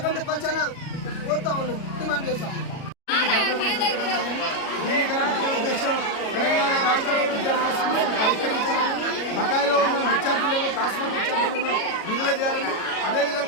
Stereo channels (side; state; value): right; late; 37 ms